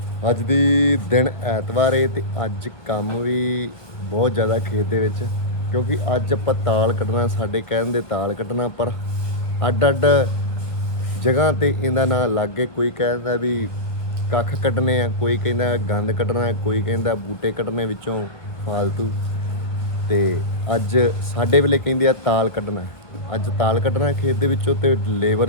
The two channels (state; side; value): late; right; 1.7 ms